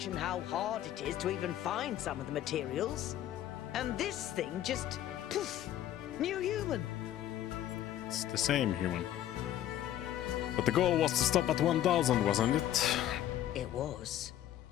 how hard it is to even find some of the materials. And this thing just, poof, new human. It's the same human. But the goal was to stop at 1000, wasn't it? It was.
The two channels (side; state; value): right; quieter; 12.1 dB